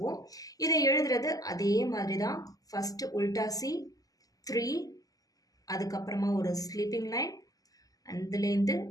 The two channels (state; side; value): late; right; 0.17 ms